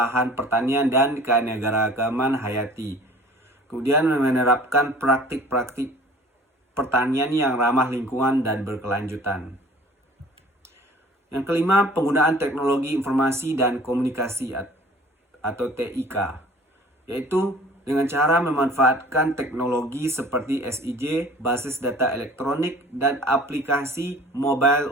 pertanian, dan keanekaragaman hayati. Kemudian menerapkan praktik-praktik pertanian yang ramah lingkungan dan berkelanjutan. Yang kelima, penggunaan teknologi informasi dan komunikasi atau TIK, yaitu dengan cara memanfaatkan teknologi seperti SIG, basis data elektronik, dan aplikasi mobile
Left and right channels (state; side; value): normal; both; correlation 0.48